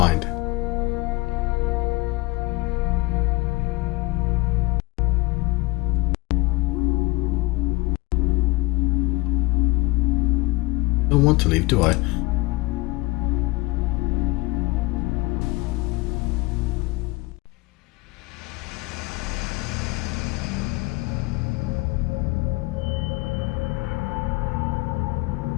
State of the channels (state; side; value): quieter; right; 23.2 dB